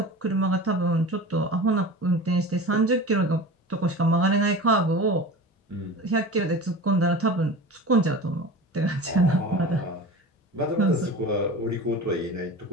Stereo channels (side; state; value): both; normal; correlation 0.34